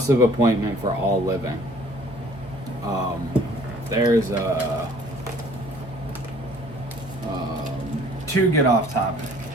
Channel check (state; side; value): normal; both; correlation 0.55